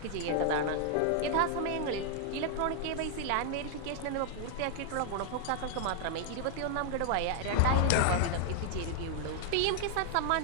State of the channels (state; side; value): different; both; correlation 0.00